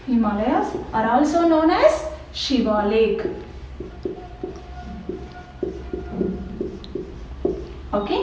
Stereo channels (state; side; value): identical; both; correlation 1.00